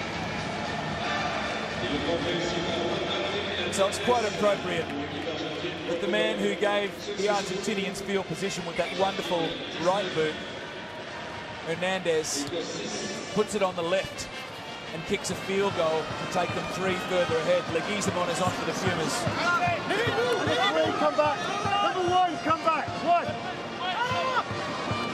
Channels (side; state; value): both; identical; correlation 1.00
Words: So it's quite appropriate that the man who gave the Argentinians field position with that wonderful right boot, Hernandez, puts it on the left and kicks a field goal to take them 3 further ahead. Leguizamon is on for the Pumas. Come back. Number 1, come back. 1.